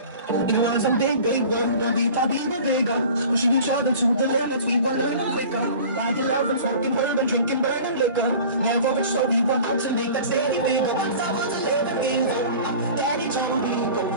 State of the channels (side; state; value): both; inverted; correlation -0.42